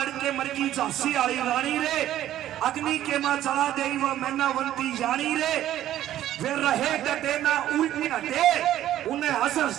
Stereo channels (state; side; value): quieter; left; 12.6 dB